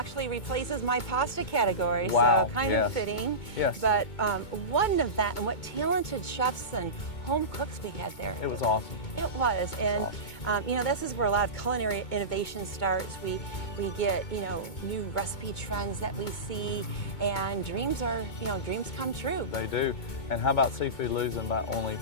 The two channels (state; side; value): late; right; 2.2 ms